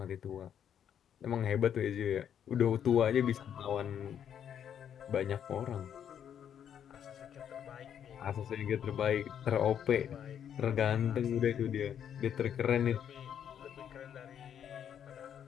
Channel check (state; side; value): quieter; right; 9.0 dB